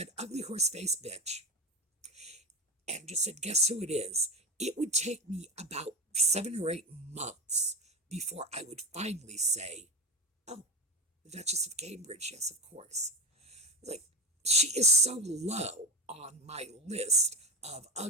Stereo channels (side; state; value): both; normal; correlation 0.22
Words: ugly horse-faced bitch and just said, guess who it is, it would take me about 7 or 8 months before I would finally say, oh, the Duchess of Cambridge, yes, of course. Like, she is so low on my list of